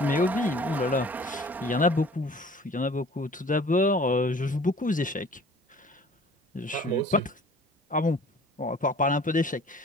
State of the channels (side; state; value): both; normal; correlation 0.49